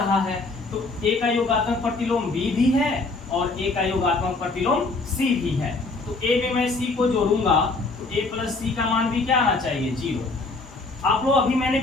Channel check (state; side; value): quieter; right; 3.5 dB